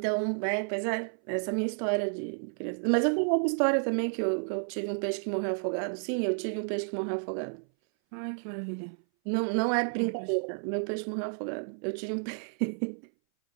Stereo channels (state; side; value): silent; left; 57 dB below the other